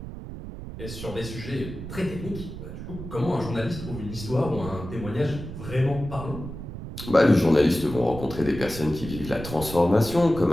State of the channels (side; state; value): right; noise; rumble, 10 dB below the sound